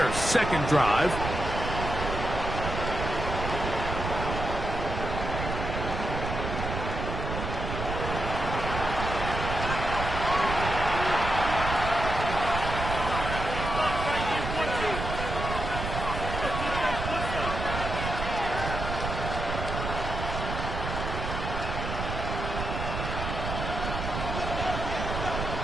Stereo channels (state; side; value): noise; right; rumble, 4 dB below the sound